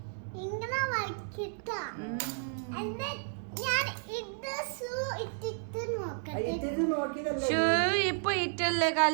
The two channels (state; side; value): silent; left; digital silence